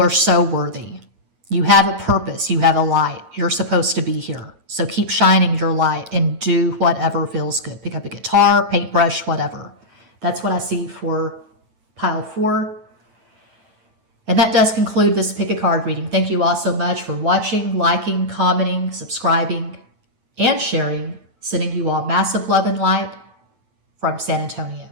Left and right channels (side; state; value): left; late; 9.0 ms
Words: so worthy. You have a purpose. You have a light. You're supposed to be here. So keep shining your light and do whatever feels good. Pick up a guitar, paintbrush, whatever. That's what I see for pile 4. And that does conclude this pick a card reading. Thank you all so much for watching, liking, commenting, subscribing, and sharing. Sending you all massive love and light from San Antonio.